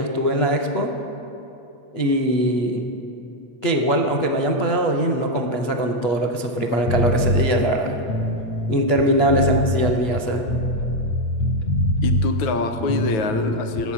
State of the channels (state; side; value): late; right; 8.3 ms